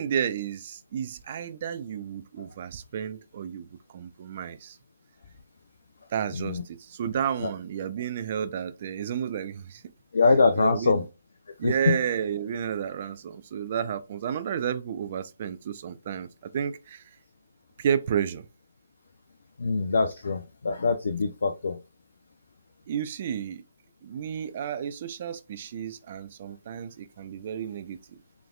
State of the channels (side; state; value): both; inverted; correlation -0.72